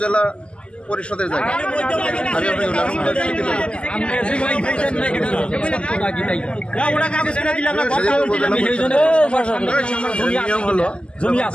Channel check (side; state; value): right; late; 0.057 ms